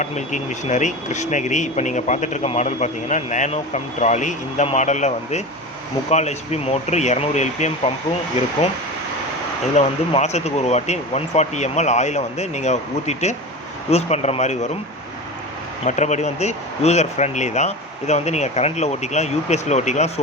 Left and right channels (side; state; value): both; normal; correlation 0.28